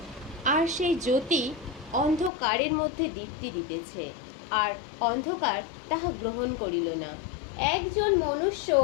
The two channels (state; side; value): drops out; right; at 2.3 s